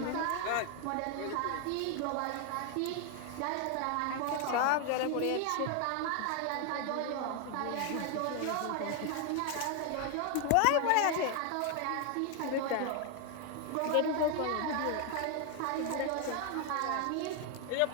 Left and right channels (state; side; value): different; both; correlation 0.01